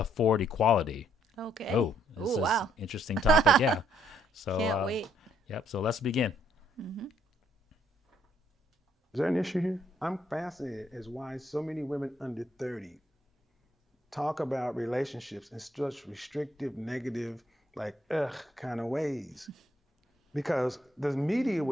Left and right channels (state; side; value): normal; both; correlation 0.70